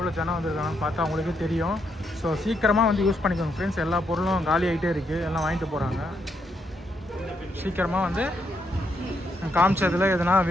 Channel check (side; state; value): both; normal; correlation 0.78